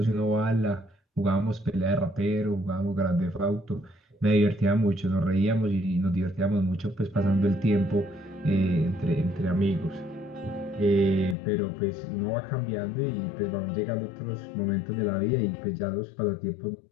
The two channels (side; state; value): right; drops out; at 11.4 s